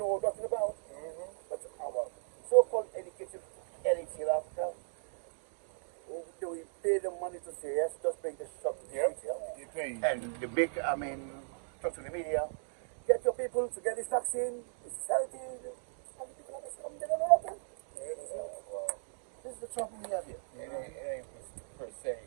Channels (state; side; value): silent; left; digital silence